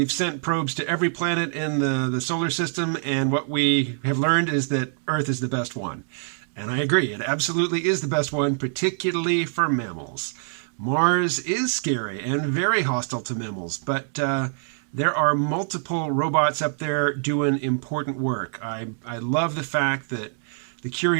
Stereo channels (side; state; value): left; silent; 62 dB below the other